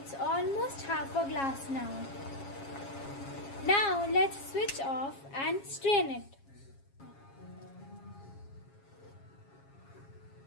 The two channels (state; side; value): late; right; 7.3 ms